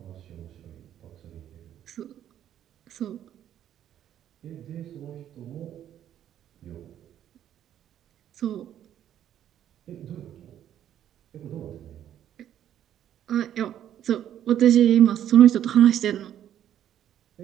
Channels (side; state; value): left; quieter; 10.8 dB